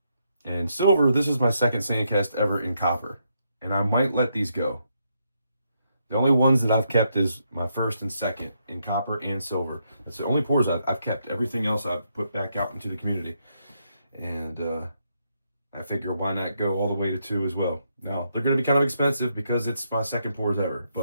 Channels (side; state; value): both; inverted; correlation -0.78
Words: And silver, this is my second sandcast ever in copper. And I might let these go. The only ones that I've kept is my first and second in copper and silver. That's the only pours I've kept. Everything else I've put back out into the community. And I figure why not go all the way to 2 as well. Now, they're going to be kind of expensive because it's my second pours ever.